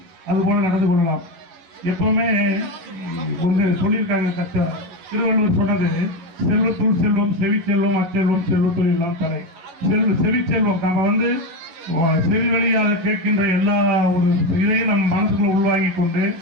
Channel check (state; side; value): late; left; 11 ms